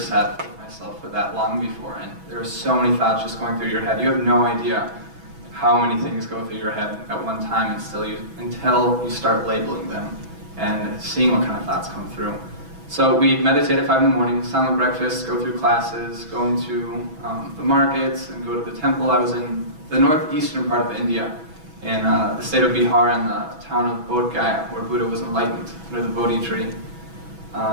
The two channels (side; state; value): left; late; 6.1 ms